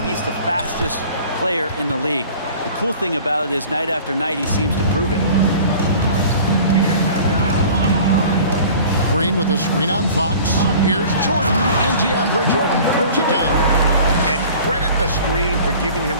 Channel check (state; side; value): inverted; both; correlation -0.45